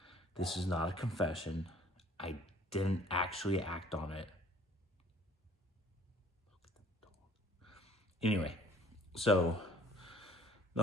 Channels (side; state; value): both; normal; correlation 0.55